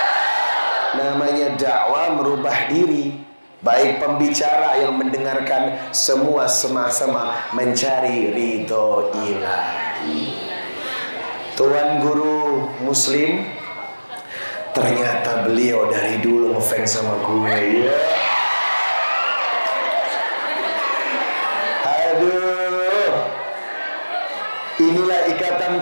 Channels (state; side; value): inverted; both; correlation -1.00